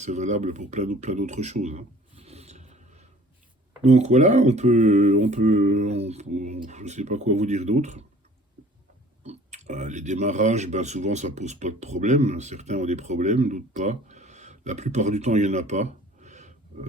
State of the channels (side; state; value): both; normal; correlation 0.50